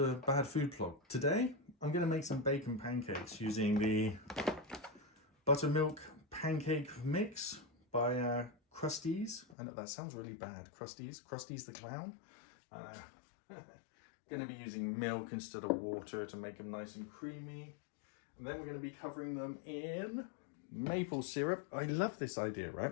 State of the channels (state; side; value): drops out; right; at 9.6 s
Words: badfoodblog. Today I'm going to make some bacon pancakes using the buttermilk pancake mix by Krusteaz. I know that sounds really bad. Krusteaz the clown. Going to be using milk instead of water to make them nice and creamy. And then we're going to be covering them in maple syrup. I love this idea,